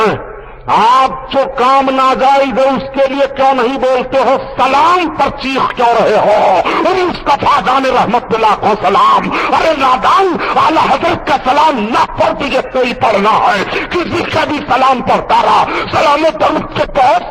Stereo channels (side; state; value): both; identical; correlation 1.00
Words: आप जो काम नाजायज है उसके लिए क्यों नहीं बोलते हो? सलाम पर चीख क्यों रहे हो? मुस्तफा जाने रहमत पे लाखों सलाम। अरे नादान, आला हजरत का सलाम न पढ़ तुझे कोई पढ़ना है, किसी का भी सलाम पढ़ता रहा। सलाम दरूद के बहुत